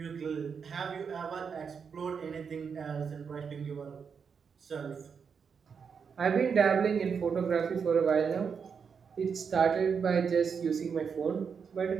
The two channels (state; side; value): quieter; left; 6.3 dB